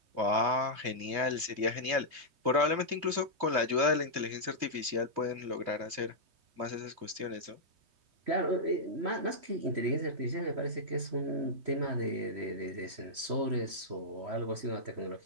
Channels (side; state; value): left; late; 3.2 ms